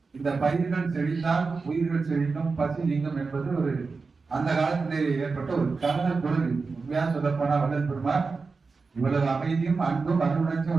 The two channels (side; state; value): left; quieter; 4.4 dB